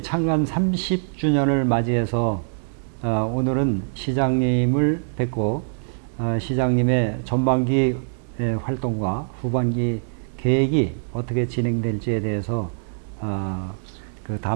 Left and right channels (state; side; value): silent; left; digital silence